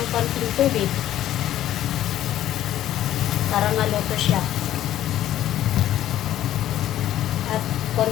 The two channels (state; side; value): quieter; right; 12.6 dB